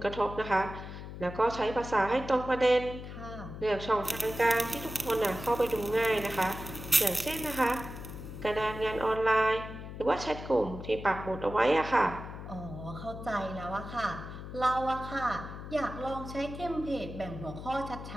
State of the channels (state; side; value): noise; left; hum, 10 dB below the sound